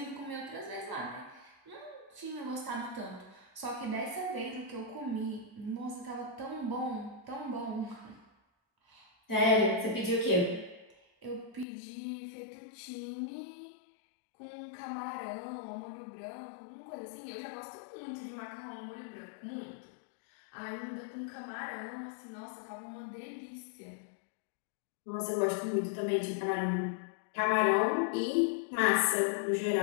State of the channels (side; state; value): right; drops out; at 11.7 s